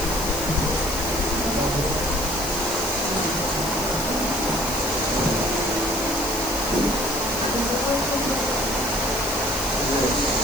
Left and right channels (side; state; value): left; noise; hiss, 7 dB below the sound